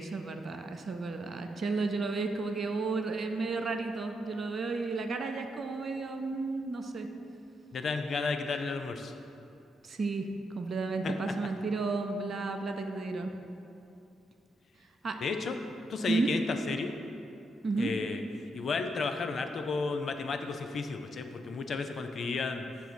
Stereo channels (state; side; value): normal; both; correlation 0.79